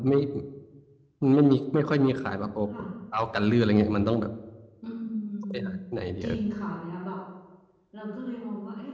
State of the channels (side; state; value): both; identical; correlation 1.00